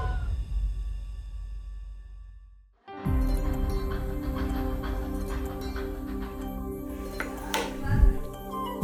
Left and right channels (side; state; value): both; identical; correlation 1.00